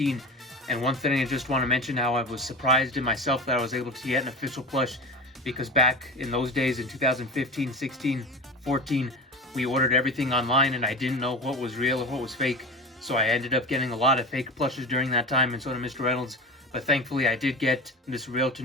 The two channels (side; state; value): both; normal; correlation 0.28